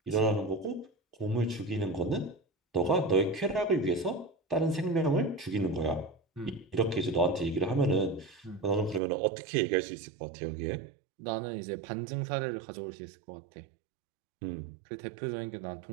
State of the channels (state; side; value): drops out; left; at 9.0 s